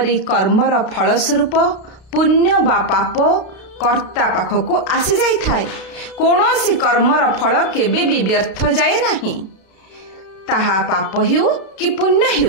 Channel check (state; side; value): late; right; 32 ms